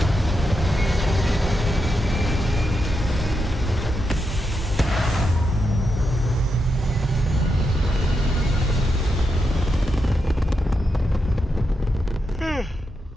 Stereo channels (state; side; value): normal; both; correlation 0.85